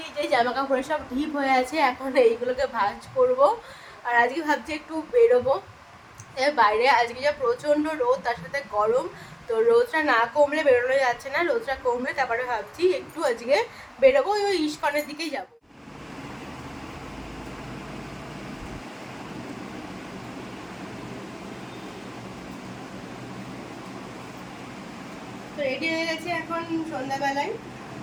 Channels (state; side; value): identical; both; correlation 1.00